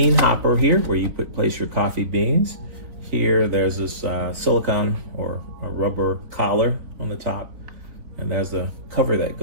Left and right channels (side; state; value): left; late; 3.7 ms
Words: hopper here where you place your coffee beans. Here there's this silicone or a rubber collar on the top, and there's the cover that